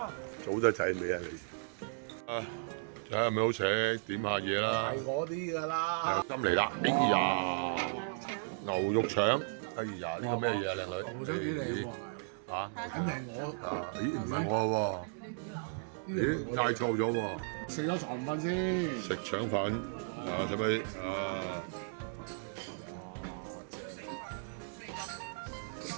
早得滯未啊你？啊，睇下係咪好食，點下嘢啦。係我啲㗎啦。啱嚟啦！哎呀，牛肉腸，哎呀，呢個咩嘢啊，靚女？牛腸幾靚喎！嚇，肯定我。啊，咦，唔係我喎，咦，嗌錯咗喎。食咗腸粉先。食腸粉，啊，使唔使啊？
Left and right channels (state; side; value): silent; left; digital silence